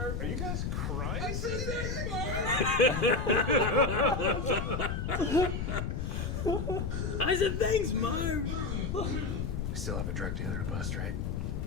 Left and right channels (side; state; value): left; noise; rumble, 2 dB below the sound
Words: Are you guys crying? I said I said thanks, Marv. We still have a drug dealer to bust, right?